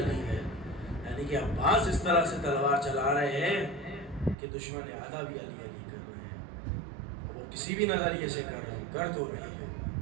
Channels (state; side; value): drops out; left; at 4.4 s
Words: ہے؟ یعنی کہ عباس اس طرح سے تلوار چلا رہے ہیں کہ دشمن آدھا بھی علی علی کر رہے ہیں، وہ کسی بھی نظریے سے کر رہے ہیں، کر تو رہے ہیں۔